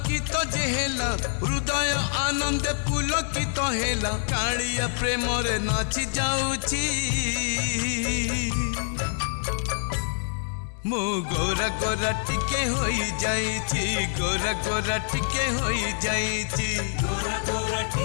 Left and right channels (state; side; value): silent; right; digital silence